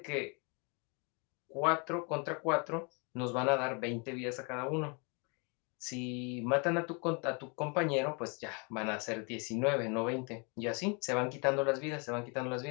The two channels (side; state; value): right; quieter; 33.7 dB